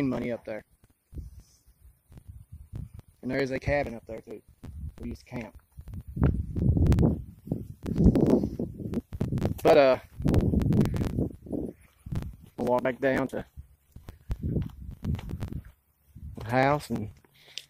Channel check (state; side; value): identical; both; correlation 1.00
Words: money up there. And there is a cabin up there too. We used to camp. But we'll walk back down to the house, and